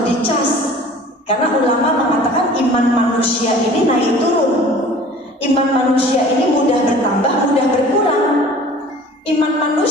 dicas, karena ulama mengatakan iman manusia ini naik turun. Iman manusia ini mudah bertambah, mudah berkurang. Iman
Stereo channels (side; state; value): both; normal; correlation 0.46